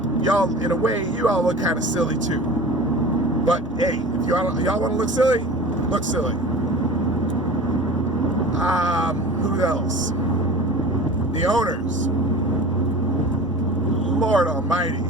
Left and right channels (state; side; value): normal; both; correlation 0.37